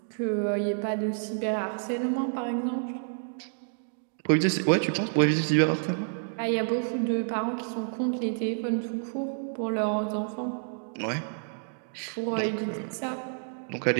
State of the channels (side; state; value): left; silent; digital silence